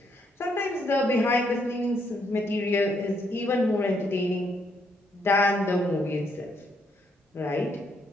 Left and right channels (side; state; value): both; normal; correlation 0.73